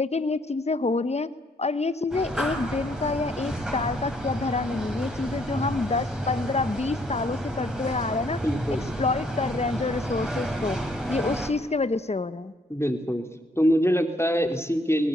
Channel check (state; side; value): normal; both; correlation 0.67